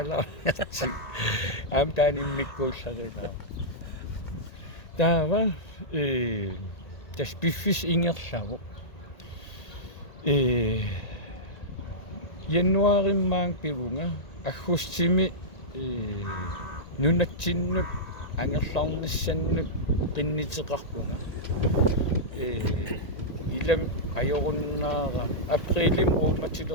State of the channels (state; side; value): late; right; 1.9 ms